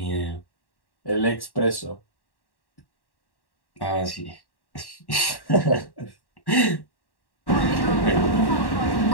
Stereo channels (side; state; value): right; late; 1.1 ms